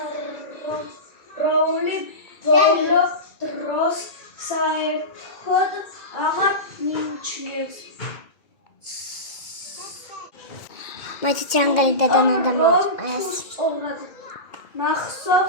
როული ბოლო დროს საერთოდ აღარ მიიჩნევს. მაინც ჯანგალი დადანადამოწეს.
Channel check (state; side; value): late; right; 2.1 ms